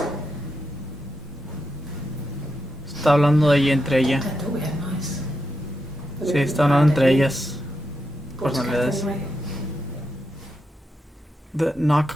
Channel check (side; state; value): both; normal; correlation 0.85